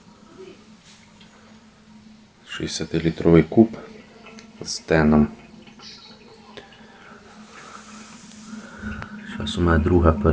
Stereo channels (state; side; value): identical; both; correlation 1.00